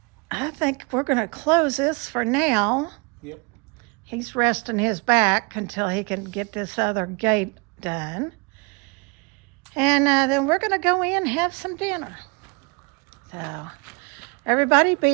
I think we're going to close this for now. Yep. He's resting his back until he can get this other gate done. And then we're going to go in and have some dinner. So everybody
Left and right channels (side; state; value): left; quieter; 31.3 dB